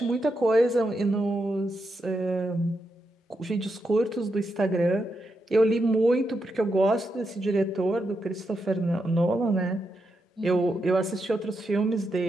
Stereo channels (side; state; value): both; normal; correlation 0.84